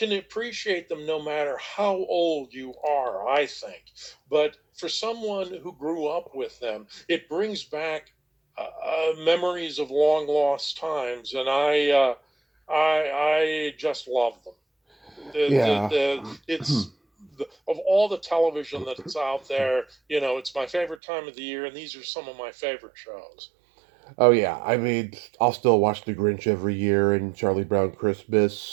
appreciate them no matter how old you are, I think. But for someone who grew up with them, it brings back memories of long lost times, and I just love them. Yeah. It's of all the television that's out there, it's my favorite time of the year, and these are some of my favorite shows. Oh yeah, I mean, I'll still watch The Grinch every year and Charlie Brown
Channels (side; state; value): left; drops out; at 21.0 s